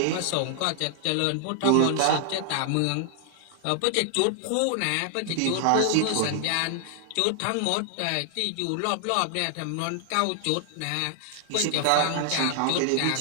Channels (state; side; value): different; both; correlation 0.00